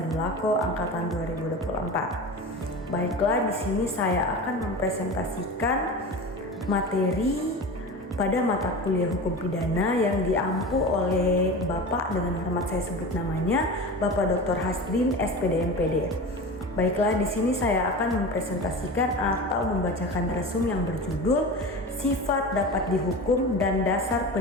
angkatan 2024. Baiklah, di sini saya akan mempresentasikan materi pada mata kuliah hukum pidana yang diampu oleh Bapak, dengan hormat saya sebut namanya, Bapak Dr. Hasdin SPD MPD. Baiklah, di sini saya akan mempresentasikan atau membacakan resum yang berjudul Sifat Dapat Dihukum dan Dasar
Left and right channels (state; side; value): normal; both; correlation 0.30